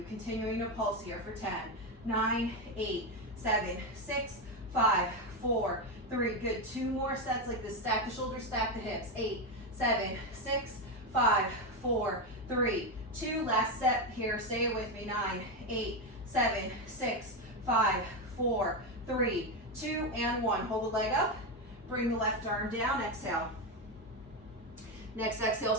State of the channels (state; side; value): normal; both; correlation 0.10